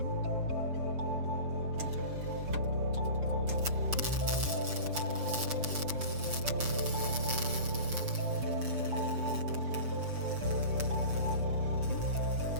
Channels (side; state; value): left; late; 6.8 ms